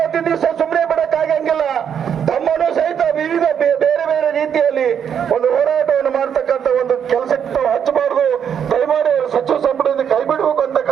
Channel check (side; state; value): left; quieter; 8.2 dB